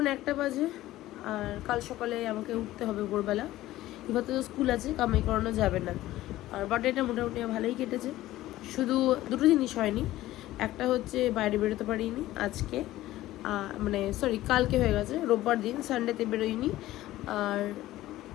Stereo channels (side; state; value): right; quieter; 15.6 dB